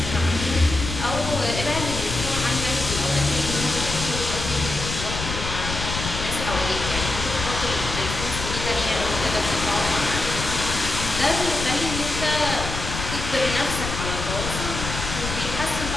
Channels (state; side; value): noise; left; rumble, 5 dB below the sound